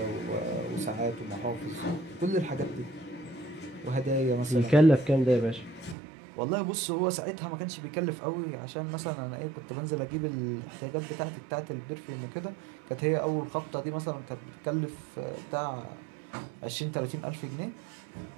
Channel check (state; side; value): drops out; left; at 6.0 s